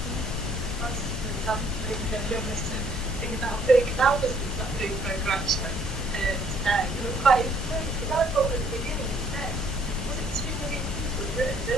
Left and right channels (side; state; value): both; normal; correlation 0.63